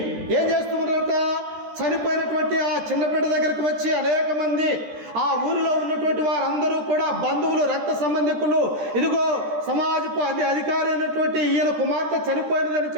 ఏం చేస్తున్నారట? చనిపోయినటువంటి ఆ చిన్న బిడ్డ దగ్గరికి వచ్చి అనేక మంది, ఆ ఊరిలో ఉన్నటువంటి వారందరూ కూడా బంధువులు, రక్త సంబంధికులు, ఇదిగో సమాజపు అధికారి అయినటువంటి ఈయన కుమార్తె చనిపోయినదని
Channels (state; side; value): late; left; 13 ms